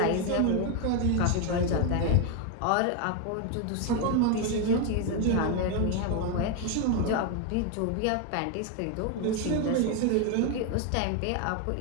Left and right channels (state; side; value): different; both; correlation 0.01